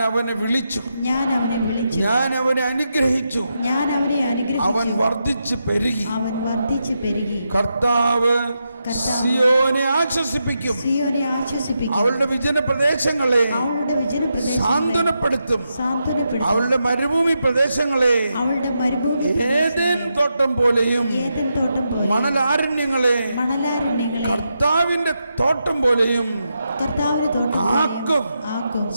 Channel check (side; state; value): both; inverted; correlation -0.85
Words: അവനെ വിളിച്ചു, ഞാൻ അവനെ അനുഗ്രഹിച്ചു, അവൻ വർദ്ധിച്ചു പെരുകി. കർത്താവ് സിയോനെ ആശ്വസിപ്പിക്കും, അവളുടെ വിജന പ്രദേശങ്ങളെ സാന്ത്വനപ്പെടുത്തും, അവളുടെ മരുഭൂമി പ്രദേശങ്ങളെ ഏദെൻ തോട്ടം പോലെയും മണലാരണ്യങ്ങളെ കർത്താവിന്റെ തോട്ടം പോലെയും ആക്കും.